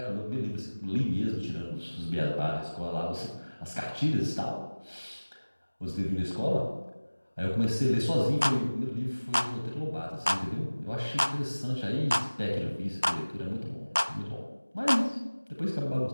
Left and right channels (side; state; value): both; inverted; correlation -1.00